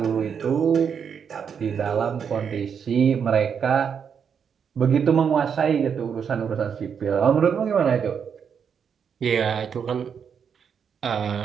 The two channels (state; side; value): quieter; left; 7.1 dB